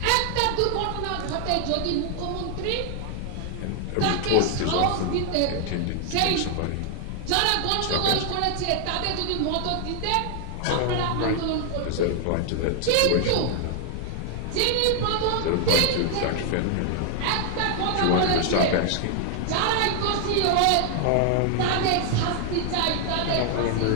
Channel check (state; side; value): different; both; correlation 0.00